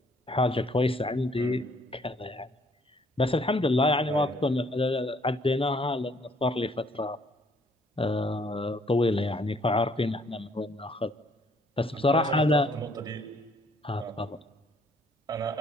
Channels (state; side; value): normal; both; correlation 0.63